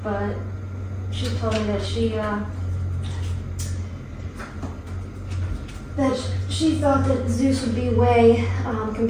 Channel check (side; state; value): both; identical; correlation 1.00